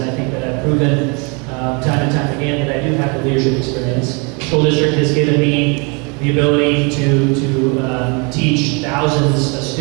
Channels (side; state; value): left; quieter; 32.1 dB